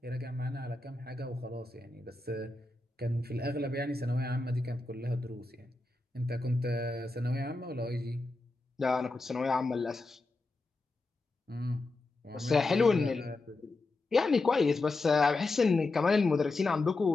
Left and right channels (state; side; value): quieter; right; 3.2 dB